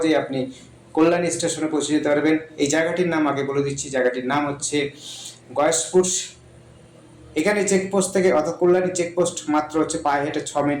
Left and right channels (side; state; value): both; identical; correlation 1.00